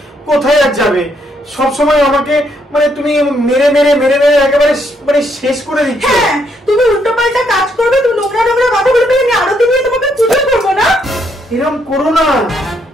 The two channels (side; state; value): both; normal; correlation 0.74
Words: কোথায় আর যাবে? সব সময় আমাকে মানে তুমি মেরে মেরে মেরে মেরে একেবারে মানে শেষ করে দিচ্ছ। হ্যাঁ, তুমি উল্টোপাল্টা কাজ করবে, তুমি নোংরা নোংরা কথা বলবে, আমি আরতি নিয়ে তোমাকে পুজো করবো না। এরকম করো না,